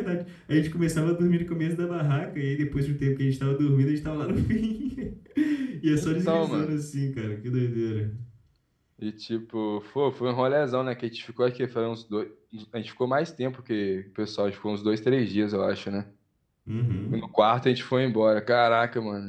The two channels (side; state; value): both; identical; correlation 1.00